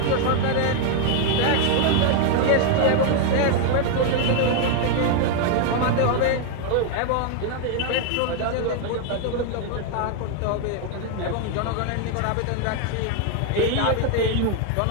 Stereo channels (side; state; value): both; different; correlation 0.00